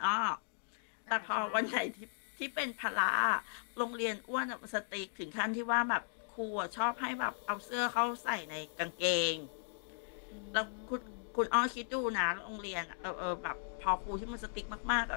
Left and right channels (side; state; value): right; silent; digital silence